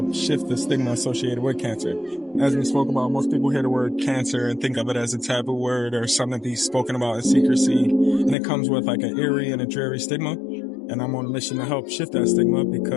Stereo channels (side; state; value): right; drops out; at 8.3 s